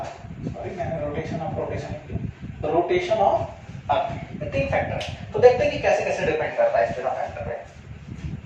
sorry मैंने रोटेशन ऑफ अर्थ, ये तीन फैक्टर है। तो देखते हैं कि कैसे कैसे डिपेंड करता है इस तीनों फैक्टर पे।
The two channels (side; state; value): both; identical; correlation 1.00